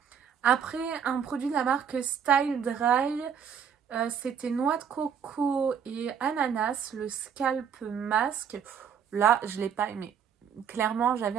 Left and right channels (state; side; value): quieter; left; 7.7 dB